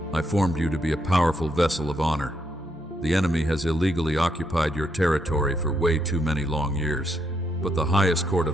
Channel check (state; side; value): normal; both; correlation 0.77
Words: I formed you to be a powerful vessel of honor. The enemy has illegally occupied your territory for way too many long years, but the highest court